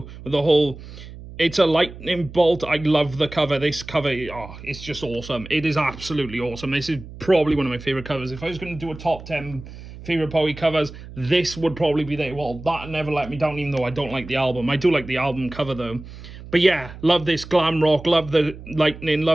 the whole... It's a lightning bolt. I love the cover. This cover, oh, it's just awesome. It is absolutely awesome. This is probably one of my favourite covers. If I was going to do a top 10 favourite Bowie covers, this would probably be there. Well, that Never Let Me Down, even though I don't like the album. I do like the album cover, though. But yeah, love this glam rock. Love the lightning.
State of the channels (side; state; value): right; noise; hum, 15 dB below the sound